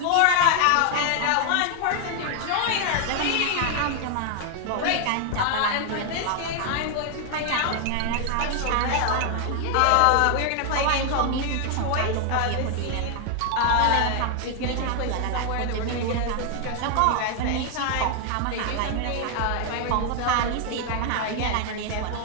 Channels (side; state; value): both; different; correlation 0.00